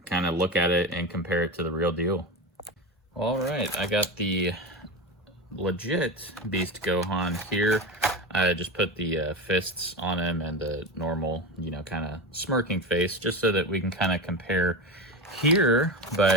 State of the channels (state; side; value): normal; both; correlation 0.22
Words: kind of look at it and compare it to the real deal. All right, I got the legit Beast Gohan here. I just put the fists on him and the normal, kind of smirking face, just so that we can kind of compare here.